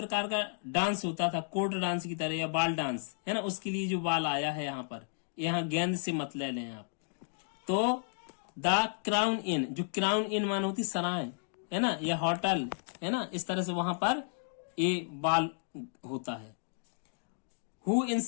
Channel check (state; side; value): silent; right; digital silence